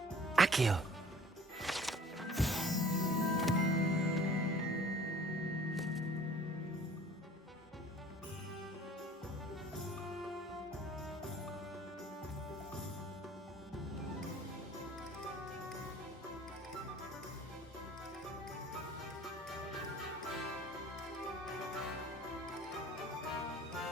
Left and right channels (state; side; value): normal; both; correlation 0.50